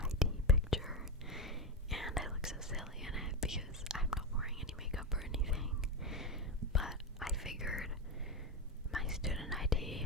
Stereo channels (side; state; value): both; normal; correlation 0.13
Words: picture, and I look so silly in it because I'm not wearing any makeup or anything, but I figured my student